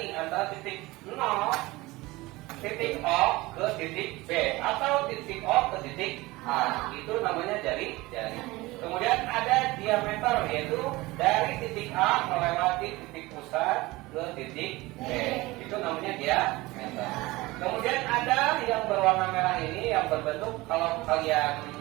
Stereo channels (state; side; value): quieter; left; 20.7 dB